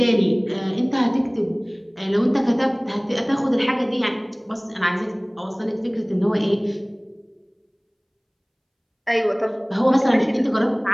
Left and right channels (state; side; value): identical; both; correlation 1.00